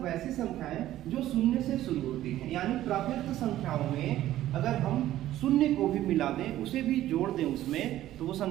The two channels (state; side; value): quieter; left; 13.8 dB